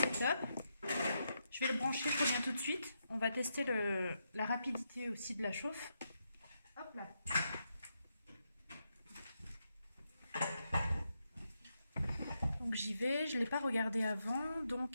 top. Je vais le brancher, je reviens tout de suite. On va tester la rapidité aussi de la chauffe. Hop là. Donc j'y vais, je ne l'ai pas regardé avant,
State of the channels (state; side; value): inverted; both; correlation -0.83